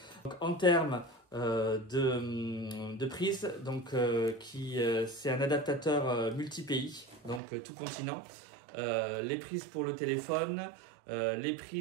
Donc, en termes de prise, donc c'est un adaptateur multi-pays, donc tout continent. Les prises pour le téléphone, les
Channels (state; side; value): drops out; left; at 7.4 s